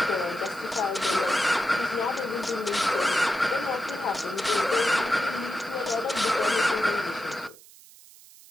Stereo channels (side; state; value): right; noise; hiss, 22 dB below the sound